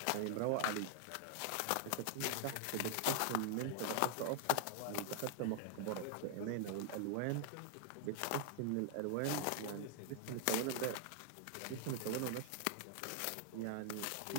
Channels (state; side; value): different; both; correlation 0.00